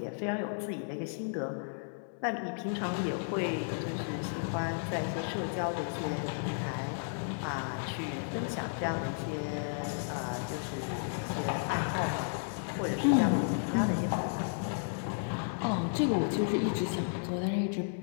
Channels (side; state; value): right; silent; digital silence